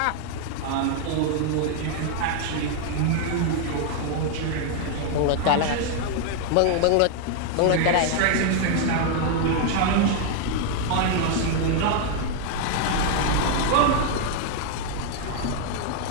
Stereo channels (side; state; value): both; different; correlation 0.00